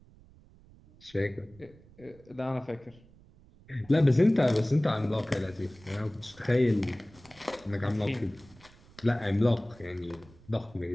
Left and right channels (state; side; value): noise; right; rumble, 25 dB below the sound